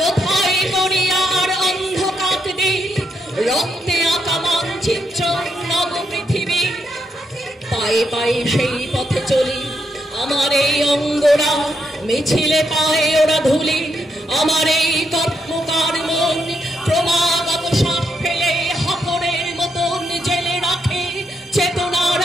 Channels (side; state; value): both; normal; correlation 0.80